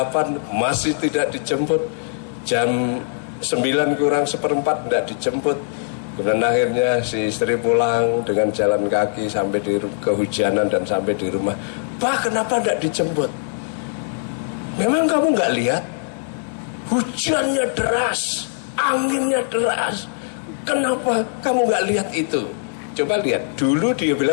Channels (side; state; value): right; silent; digital silence